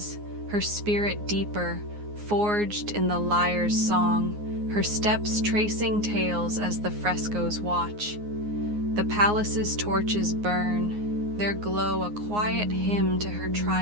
her spirit deeper, forged in the Lyre's song, her steps tracing tales as the frescoes watch. The palace's torches burn, their glow a quiet hymn to her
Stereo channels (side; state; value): left; late; 9.6 ms